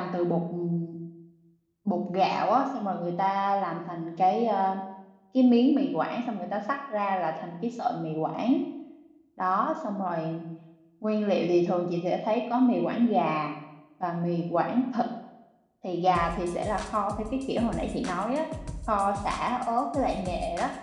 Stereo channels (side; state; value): both; identical; correlation 1.00